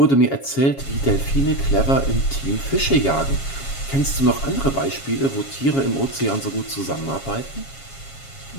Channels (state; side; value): late; right; 7.3 ms